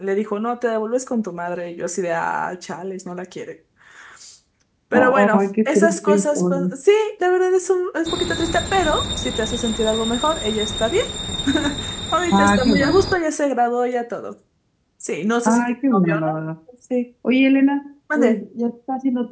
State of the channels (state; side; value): identical; both; correlation 1.00